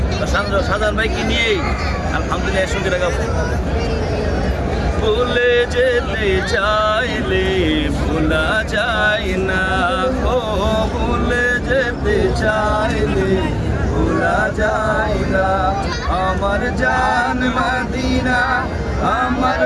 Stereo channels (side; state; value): both; identical; correlation 1.00